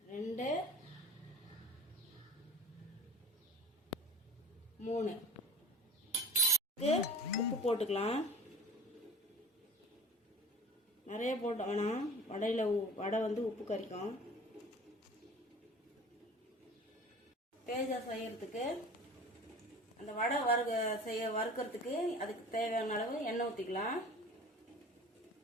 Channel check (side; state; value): both; normal; correlation 0.39